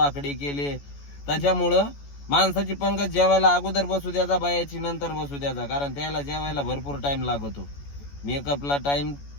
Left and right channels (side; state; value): right; late; 14 ms